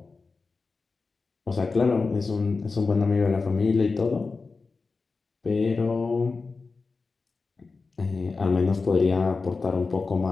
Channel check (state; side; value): quieter; right; 4.2 dB